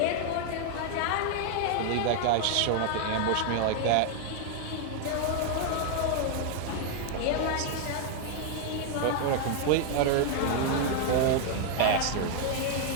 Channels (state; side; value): different; both; correlation 0.00